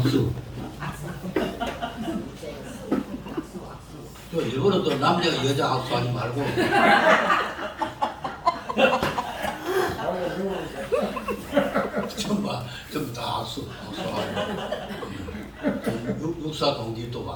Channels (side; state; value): both; identical; correlation 1.00